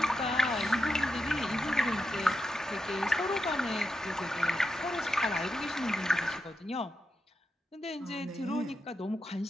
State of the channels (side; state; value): both; normal; correlation 0.86